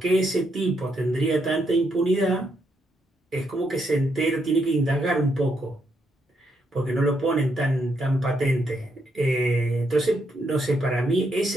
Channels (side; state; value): both; normal; correlation 0.78